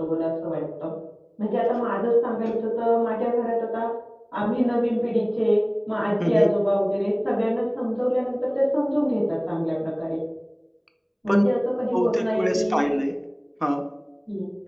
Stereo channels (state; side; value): identical; both; correlation 1.00